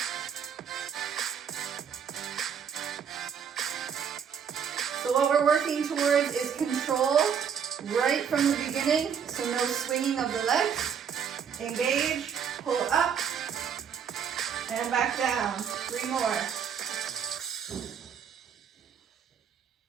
So what we're working towards is control right from the beginning, so no swinging of the legs. Engage, pull up, and back down. 3 more.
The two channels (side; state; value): left; quieter; 7.5 dB